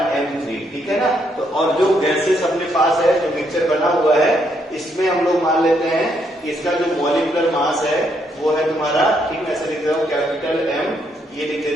M3, ठीक है ना। तो और जो गैसेस अपने पास है, जो मिक्सचर बना हुआ है, इसमें हम लोग मान लेते हैं कि इसका जो मॉलिक्यूलर मास है वो है तुम्हारा, ठीक है, ऐसे लिख रहा हूँ कैपिटल M, ये लिख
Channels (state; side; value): normal; both; correlation 0.74